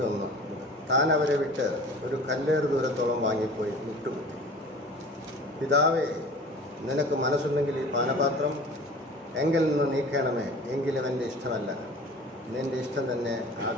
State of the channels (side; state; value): both; normal; correlation 0.42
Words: താൻ അവരെ വിട്ട് ഒരു കല്ലേറ് ദൂരത്തോളം വാങ്ങിപ്പോയി മുട്ടുകുത്തി, പിതാവേ, നിനക്ക് മനസ്സുണ്ടെങ്കിൽ ഈ പാനപാത്രം എങ്കിൽ നിന്ന് നീക്കണമേ, എങ്കിലും എൻ്റെ ഇഷ്ടമല്ല, നിൻ്റെ ഇഷ്ടം തന്നെ